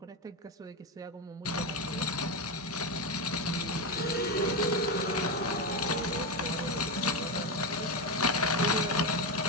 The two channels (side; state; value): both; normal; correlation 0.12